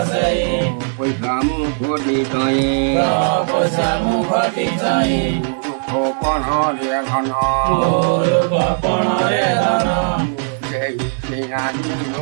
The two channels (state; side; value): silent; left; digital silence